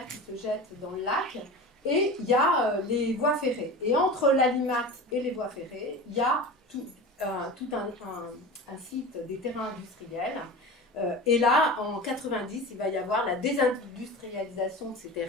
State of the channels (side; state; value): both; normal; correlation 0.32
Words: qui se jette dans le lac, et il y a les voies ferrées. Et entre l'Alimat et les voies ferrées, il y a tout un site des terrains industriels. Et là, en 90, il va y avoir la désindustrialisation de ces